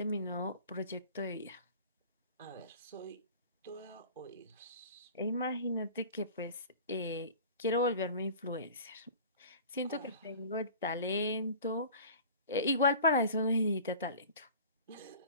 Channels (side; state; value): both; inverted; correlation -0.41